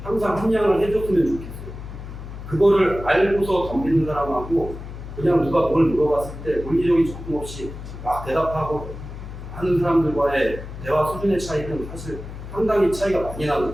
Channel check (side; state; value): left; noise; hum, 11 dB below the sound